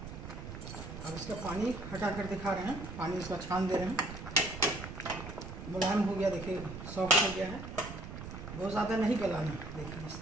अब इसका पानी हटा कर दिखा रहे हैं। पानी इसका छान दे रहे हैं। मुलायम हो गया, देखिए सॉफ्ट हो गया है। बहुत ज़्यादा नहीं गलाना, देखिए इस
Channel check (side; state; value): right; noise; rumble, 9 dB below the sound